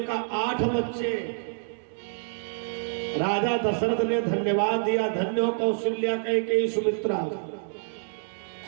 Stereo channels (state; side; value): silent; left; digital silence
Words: कहा 8 बच्चे। राजा दशरथ ने धन्यवाद दिया, धन्य हो कौशल्या, कैकेयी, सुमित्रा,